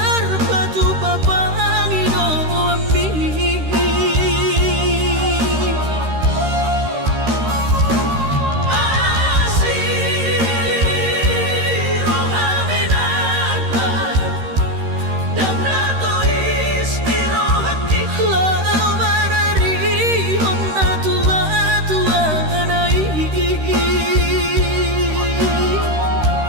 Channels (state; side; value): late; left; 13 ms